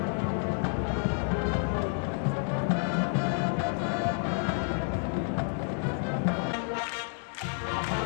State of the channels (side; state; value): right; silent; 58 dB below the other